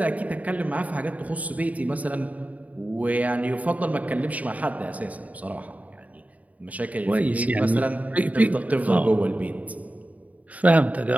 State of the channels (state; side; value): late; left; 0.071 ms